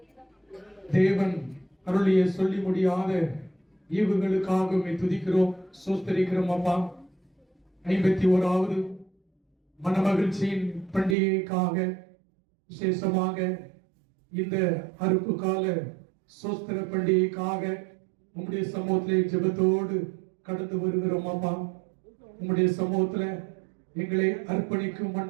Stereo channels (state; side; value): drops out; left; at 11.2 s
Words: தேவன் அருளிய சொல்லி முடியாத ஈவுகளுக்காக துதிக்கிறோம், சோஸ்தரிக்கிறோம். அப்பா, 51வது மனமகிழ்ச்சியின் பண்டிகைக்காக விசேஷமாக இந்த அறுப்பு கால சோஸ்திர பண்டிகைக்காக உம்முடைய சமூகத்திலே ஜெபத்தோடு கடந்து வருகிறோம். அப்பா, உம்முடைய சமூகத்துல எங்களை அர்ப்பணிக்கும்